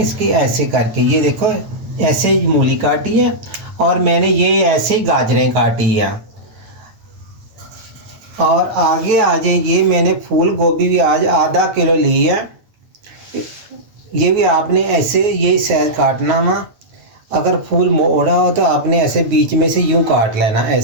इसकी, ऐसे करके। ये देखो ऐसे ही मूली काटी है और मैंने ये ऐसे ही गाजरें काटी है। और आगे आ जाए, ये मैंने फूल गोभी भी आज आधा किलो ली है। ये भी आपने ऐसे यही साइज काटना वा। अगर फूल मोड़ा हो तो आपने ऐसे बीच में से यूं काट लेना,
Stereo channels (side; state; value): left; late; 9.0 ms